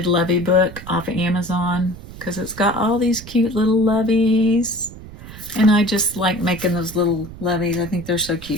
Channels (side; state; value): right; noise; rumble, 15 dB below the sound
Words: Lovey book off of Amazon because it's got all these cute little loveys. And I just like making those little loveys. I think they're so